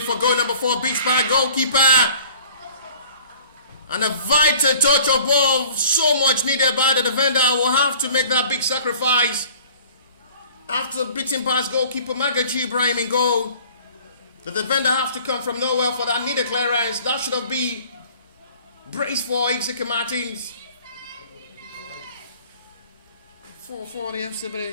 goal number 4, beats by goalkeeper. And a vital touch of ball, so much needed by the defender, will have to make that big sacrifice. After beating past goalkeeper Magaji Ibrahim in goal, the defender have to come from nowhere for that needed clearance. That should have been brace for Exeter Martins. 4 for the FC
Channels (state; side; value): inverted; both; correlation -0.50